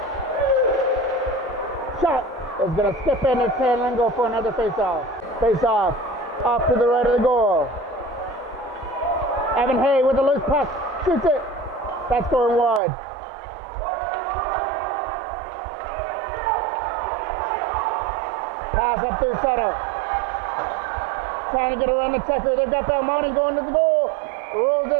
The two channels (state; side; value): drops out; left; at 12.8 s